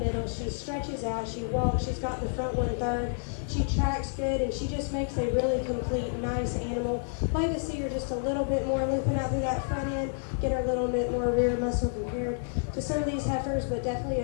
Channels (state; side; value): silent; right; 58 dB below the other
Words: she stretches out, she walks, she's got the front 1/3, she tracks good, and she just makes a really complete, nice animal. Like to see her just a little bit more looking out through that front end, get her a little bit more rear muscle compared to some of these heifers, but